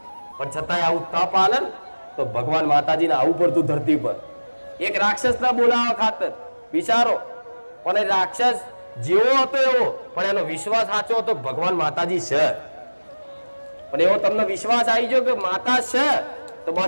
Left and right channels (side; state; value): both; inverted; correlation -1.00